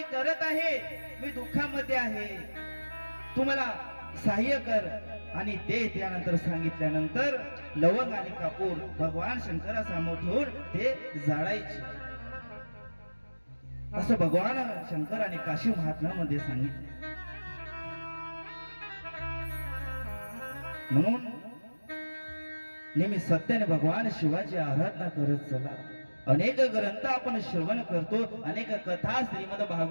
करत आहे, मी दुःखामध्ये आहे, तू मला सहाय्य कर. आणि ते त्यानंतर सांगितल्यानंतर लवंग आणि कापूर भगवान शंकरासमोर ठेवून ते जाळायचे. असं भगवान शंकराने काशी महात्म्यामध्ये सांगितले. म्हणून नेहमी सत्याने भगवान शिवाची आराधना करत चला. अनेक ग्रंथ आपण श्रवण करतो, अनेक कथा श्रीमद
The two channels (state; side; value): inverted; both; correlation -1.00